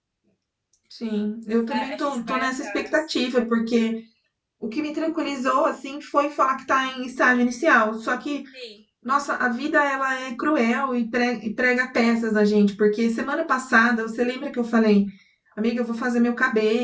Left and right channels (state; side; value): identical; both; correlation 1.00